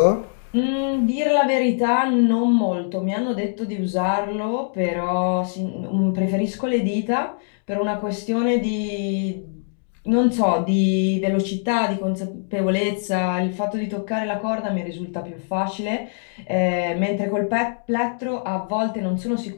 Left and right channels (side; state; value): right; silent; digital silence